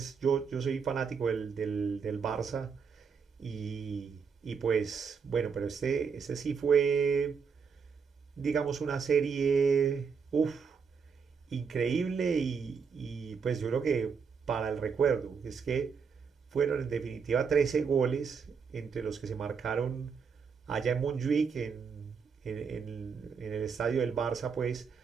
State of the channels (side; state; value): left; quieter; 5.9 dB